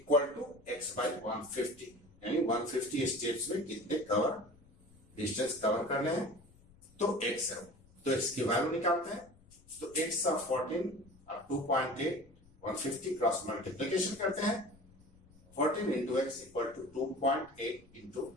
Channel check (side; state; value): left; noise; rumble, 26 dB below the sound